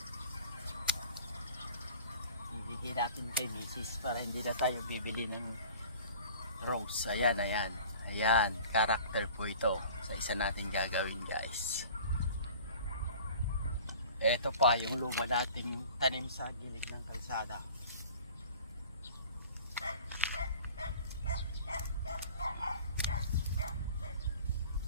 Ibigay natin kay Mrs. para hindi na tayo bibili ng rose. Ayan, character po ito sa isa natin gagawin guys. Ito pa yung luma nating tanim sa gilid ng kalsada.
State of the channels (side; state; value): both; inverted; correlation -0.45